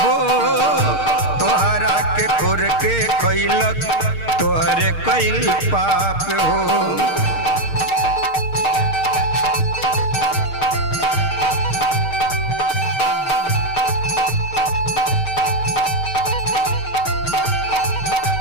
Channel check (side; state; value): right; late; 6.5 ms